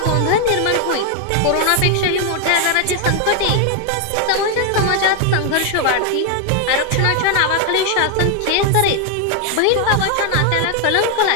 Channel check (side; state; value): both; different; correlation 0.01